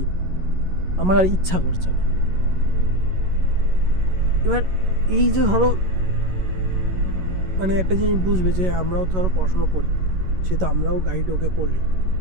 আমার আর ইচ্ছা করছে না। এবার এই যে ধরো মানে একটা জিনিস বুঝবে যে আমরাও তো ধরো পড়াশোনা করি, সে তো আমরাও গাইড ওকে করলি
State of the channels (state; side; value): late; left; 11 ms